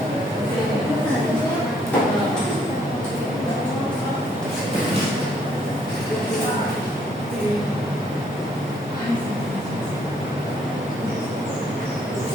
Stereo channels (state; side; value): normal; both; correlation 0.67